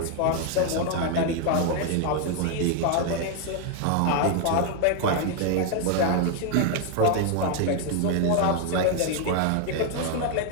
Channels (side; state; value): both; different; correlation 0.01